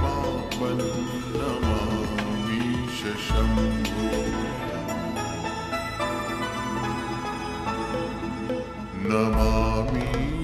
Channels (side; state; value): both; identical; correlation 1.00